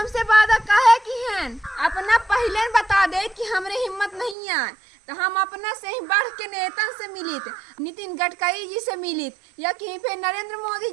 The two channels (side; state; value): left; drops out; at 4.4 s